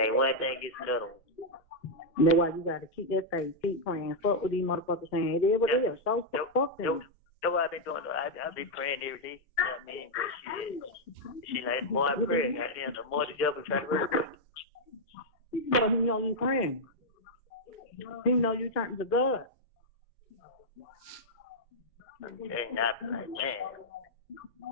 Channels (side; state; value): both; normal; correlation -0.03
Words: one thing, it's another one. That's why you gotta keep that faith, keep praying. Fuck with these motherfuckers saying it is what it is. So fuck them. That's what I've been doing. I be praying every day. You know what I mean? But she like, the more I pray, goddamn, the more the devil try to work. Because he know you praying. He know you turning to God. Okay, not like, man.